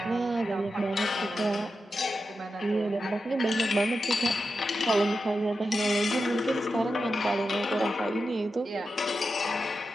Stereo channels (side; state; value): both; normal; correlation 0.89